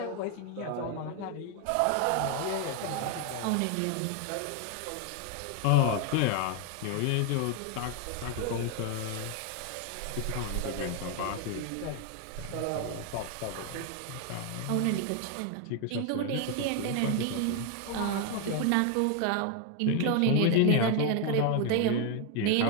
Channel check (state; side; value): different; both; correlation 0.01